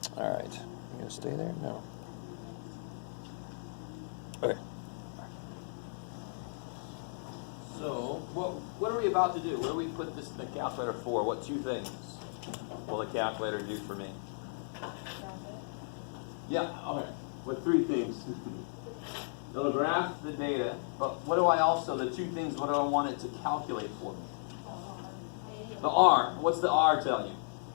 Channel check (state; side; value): silent; right; 54 dB below the other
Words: Alright. You gonna stay there? No. Okay. So, what are we about to do? What do we put this in the calculator for? What two things will the calculator do for me? Yeah, okay. What three things? It'll graph the data, but what do I also, the two things, what do I want it to calculate for me? The R. What's the R tell you?